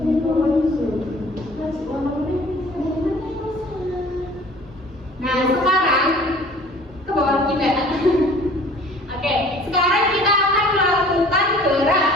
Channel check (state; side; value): normal; both; correlation 0.49